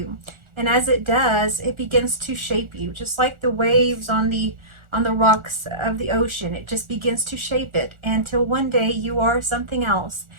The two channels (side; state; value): left; late; 1.4 ms